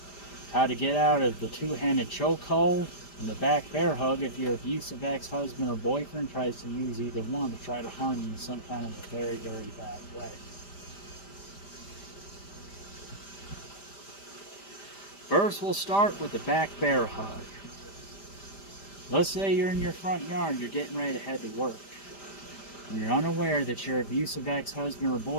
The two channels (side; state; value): right; late; 5.0 ms